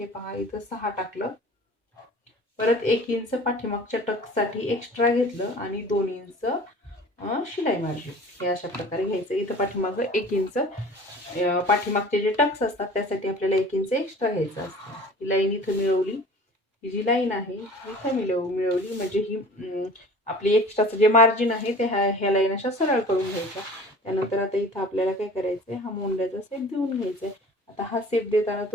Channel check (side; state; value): both; normal; correlation 0.43